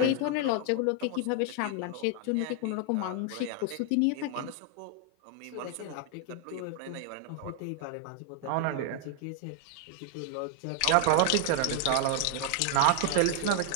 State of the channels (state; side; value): different; both; correlation 0.00